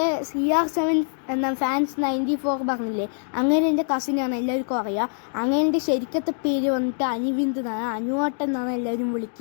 CR7 എന്ന ഫാൻസ് 94 പറഞ്ഞില്ലേ, അങ്ങനെ എൻ്റെ കസിനാണ്, എല്ലാവർക്കും അറിയാം. അങ്ങനെ എൻ്റെ ശരിക്കത്തെ പേര് വന്നിട്ട് അനിവിന്ദ് എന്നാണ്, അനുവാട്ടൻ എന്നാണ് എല്ലാവരും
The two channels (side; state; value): right; silent; digital silence